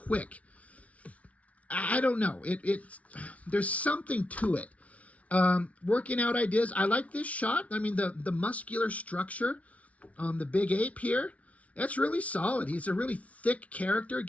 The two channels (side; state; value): right; late; 0.066 ms